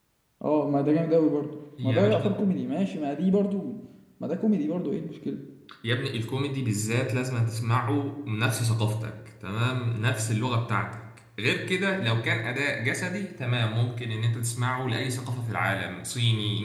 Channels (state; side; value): identical; both; correlation 1.00